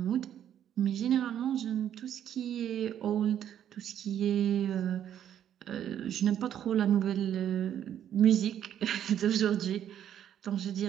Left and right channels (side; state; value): left; quieter; 10.2 dB